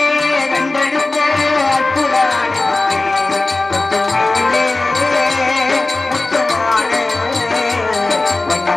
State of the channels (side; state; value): right; quieter; 3.1 dB